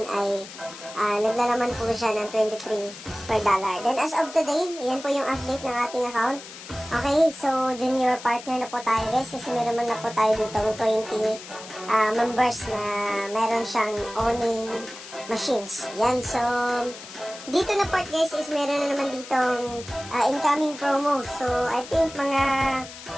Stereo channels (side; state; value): left; noise; hiss, 14 dB below the sound